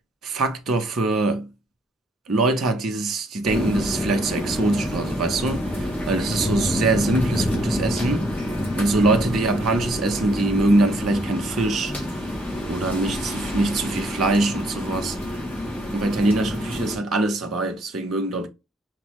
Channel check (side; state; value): both; normal; correlation 0.67